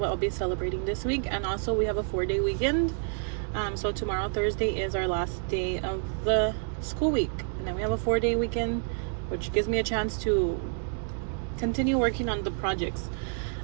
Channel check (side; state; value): left; silent; 57 dB below the other